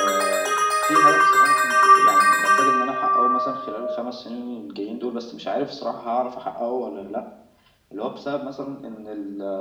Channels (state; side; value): identical; both; correlation 1.00